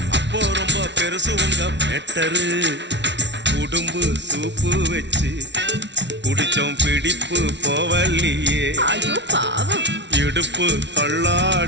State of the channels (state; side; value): late; left; 0.51 ms